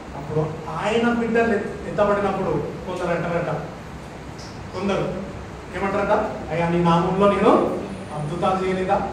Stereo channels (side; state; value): both; identical; correlation 1.00